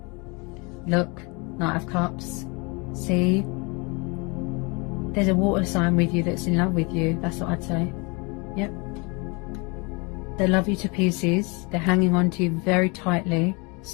Look, Knight of Cups. See? There's a water sign with you that's in love with you. That's what I'd say. Yep. They love you to pieces. They're hanging on to you very tightly.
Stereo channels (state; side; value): quieter; right; 29.5 dB